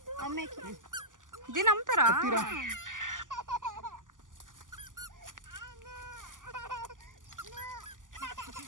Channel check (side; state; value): left; late; 0.88 ms